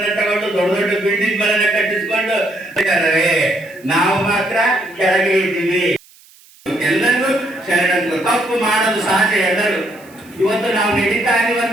ತಗೊಂಡು ದೊಡ್ಡ ದೊಡ್ಡ ಬಿಲ್ಡಿಂಗ್ ಗಳನ್ನ ಕಟ್ಟಿಸ್ಕೊಂಡು ನಾವು ಮಾತ್ರ ಕೆಳಗೆ ಇದ್ದೀವಿ. ಎಲ್ಲರೂ ಶರಣರು, ತಪ್ಪು ಮಾಡೋದು ಸಹಜ ಎಲ್ಲರೂ. ಇವತ್ತು ನಾವು ನಡೀತಾ ಇದೀವಿ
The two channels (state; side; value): noise; right; hiss, 26 dB below the sound